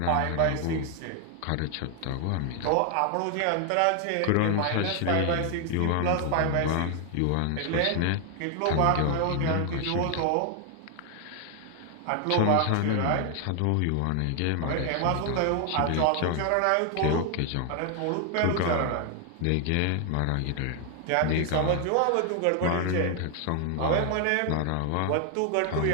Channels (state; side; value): different; both; correlation 0.00